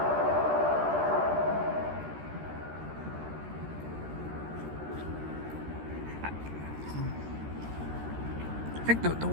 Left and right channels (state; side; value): late; left; 13 ms